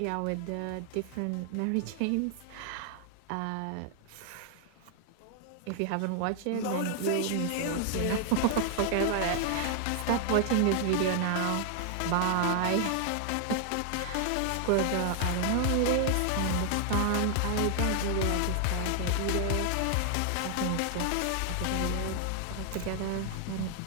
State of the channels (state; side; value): different; both; correlation 0.00